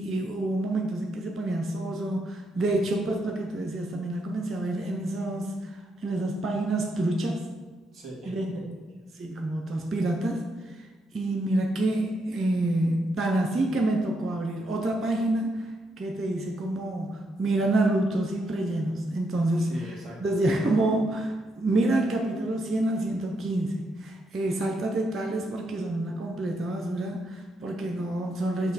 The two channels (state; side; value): normal; both; correlation 0.79